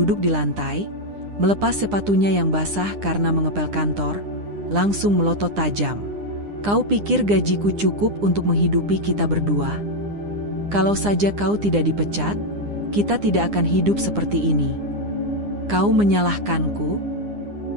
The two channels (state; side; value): late; left; 9.8 ms